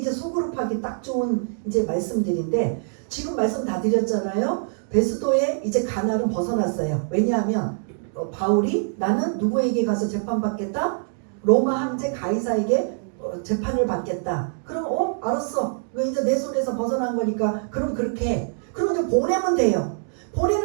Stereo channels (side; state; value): left; silent; digital silence